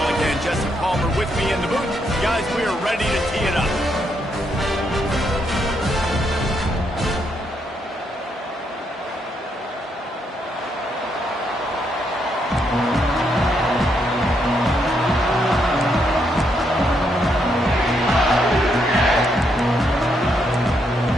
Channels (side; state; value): both; normal; correlation 0.77